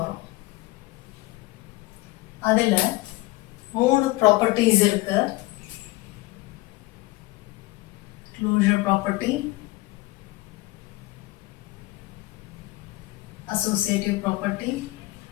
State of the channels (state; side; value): quieter; right; 19.9 dB